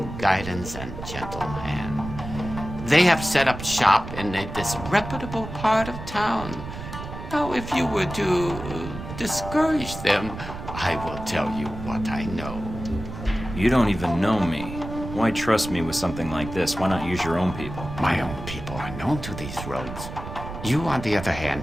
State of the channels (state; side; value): noise; right; rumble, 10 dB below the sound